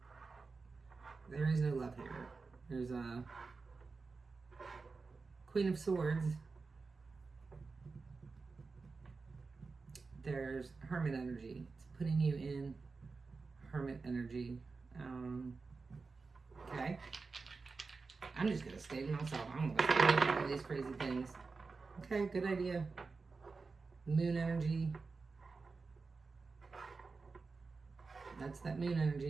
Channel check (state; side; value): quieter; left; 4.3 dB